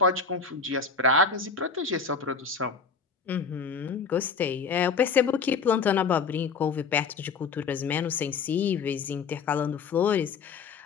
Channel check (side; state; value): right; quieter; 5.3 dB